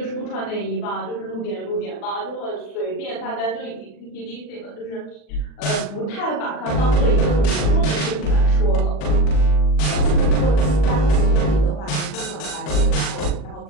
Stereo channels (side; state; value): right; late; 40 ms